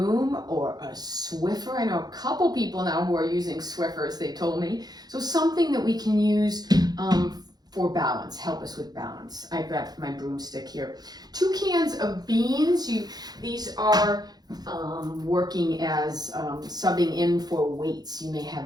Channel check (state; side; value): late; left; 0.19 ms